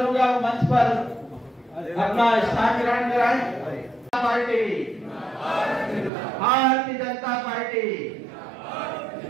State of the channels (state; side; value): drops out; left; at 6.1 s